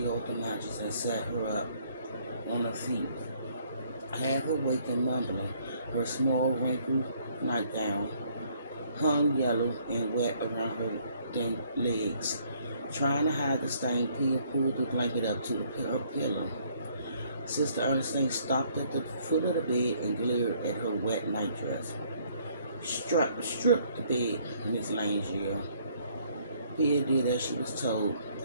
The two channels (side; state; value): both; inverted; correlation -0.64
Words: off the mattress, and sat her up on her feet, half awake and mumbling. Her small, wrinkled nightgown hung yellow and wet around her thin legs. Trying to hide the stain, Pia pulled the blanket up to her pillow. Sister Ernestine stopped at the foot of the bed and glared at her wet nightdress. Strip the bed, Miss Lane yelled. Pia did as she was told,